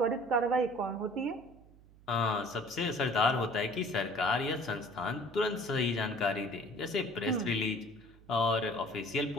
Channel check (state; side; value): noise; right; hum, 24 dB below the sound